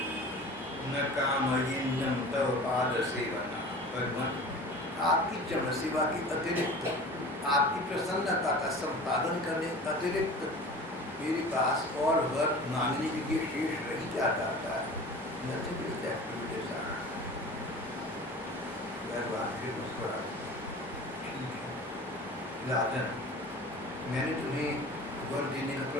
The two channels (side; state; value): both; normal; correlation 0.39